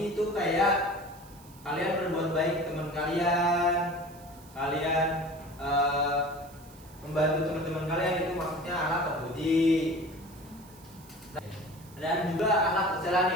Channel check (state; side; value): noise; right; hiss, 23 dB below the sound